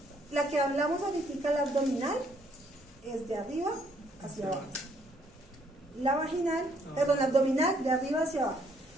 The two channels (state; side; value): normal; both; correlation 0.68